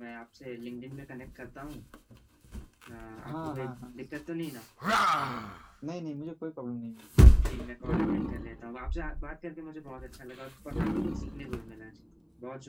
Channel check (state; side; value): identical; both; correlation 1.00